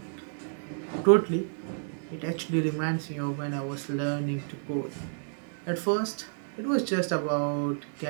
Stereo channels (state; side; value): silent; left; 58 dB below the other